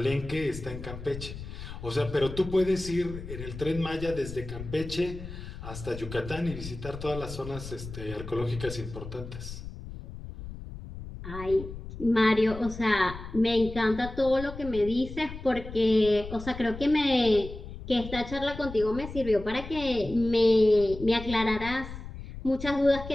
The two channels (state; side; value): noise; left; rumble, 11 dB below the sound